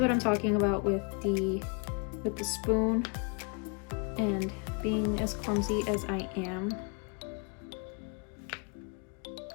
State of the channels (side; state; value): right; quieter; 35.4 dB